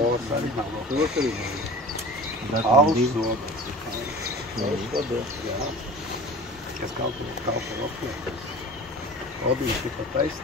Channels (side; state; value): both; normal; correlation 0.38